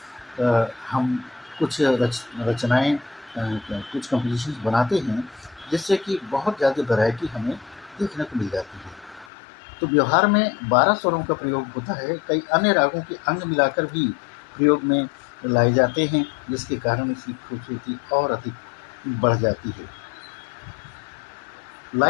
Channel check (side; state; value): right; drops out; at 9.3 s